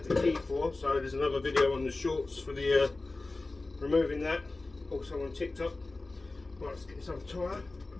the key for, so there's another video on the shorts for the removing that. Also on TikTok. Right, let's get this other tyre.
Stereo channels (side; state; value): right; quieter; 3.2 dB